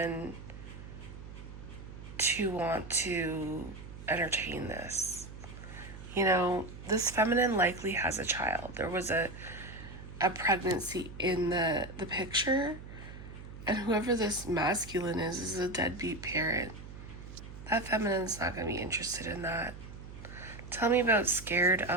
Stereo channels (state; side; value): noise; right; hum, 13 dB below the sound